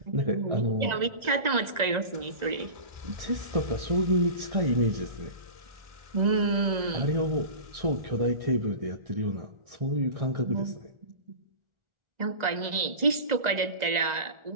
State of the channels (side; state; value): left; late; 2.0 ms